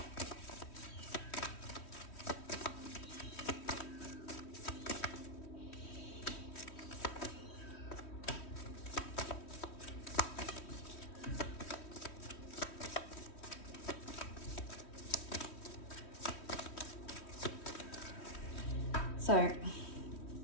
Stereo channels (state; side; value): late; right; 3.1 ms